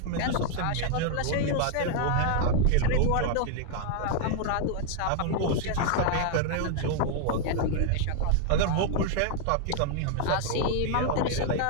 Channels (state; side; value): different; both; correlation 0.00